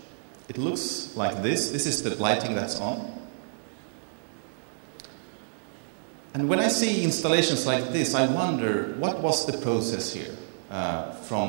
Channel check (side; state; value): left; silent; digital silence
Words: It looks like this. This is the lighting that's on. And when I see installations like this, I wonder, what was the process here